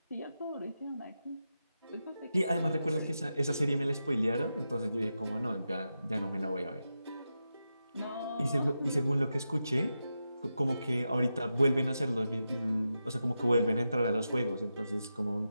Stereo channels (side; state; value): both; inverted; correlation -0.89